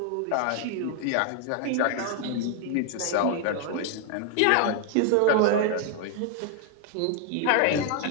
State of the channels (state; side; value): different; both; correlation 0.00